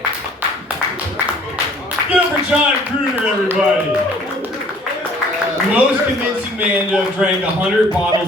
Give it for John Kruger, everybody. Most convincing man to have drank 100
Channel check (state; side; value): normal; both; correlation 0.55